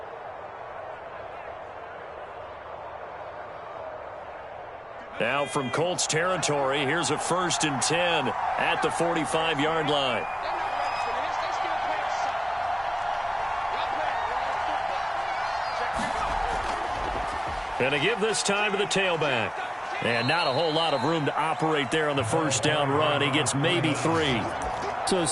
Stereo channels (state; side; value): identical; both; correlation 1.00